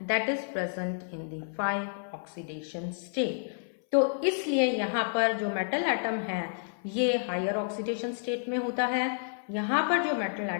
that is present in the 5 oxidation state. तो इसलिए यहाँ पर जो मेटल एटम है ये हायर ऑक्सीडेशन स्टेट में होता है, यहाँ पर जो मेटल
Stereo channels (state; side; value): silent; right; 58 dB below the other